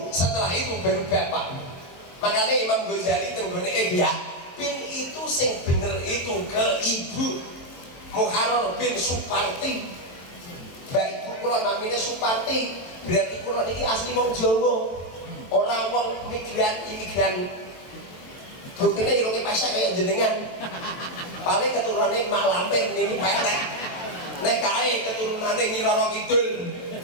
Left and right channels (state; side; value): late; right; 23 ms